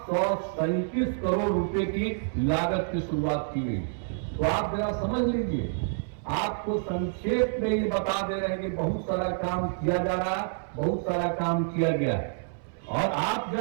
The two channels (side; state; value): left; silent; 59 dB below the other